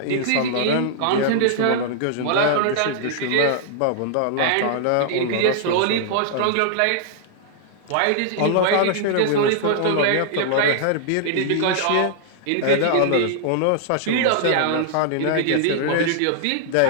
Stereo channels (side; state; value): both; different; correlation -0.01